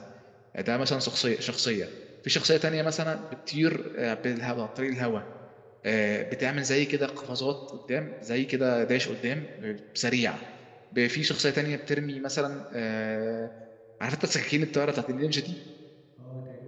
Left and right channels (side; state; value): both; identical; correlation 1.00